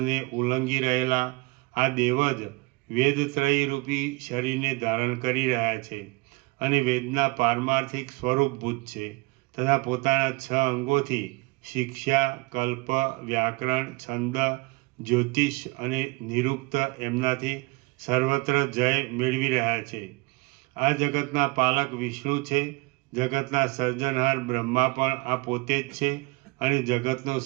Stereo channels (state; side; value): quieter; left; 25.8 dB